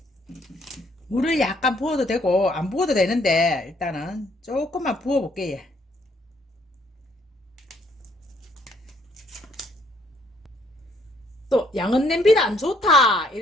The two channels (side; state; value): both; normal; correlation 0.67